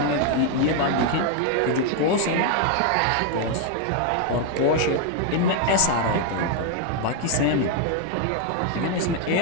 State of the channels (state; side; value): different; both; correlation 0.01